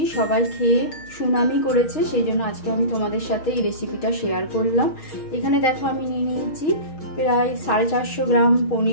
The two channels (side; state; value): right; late; 6.4 ms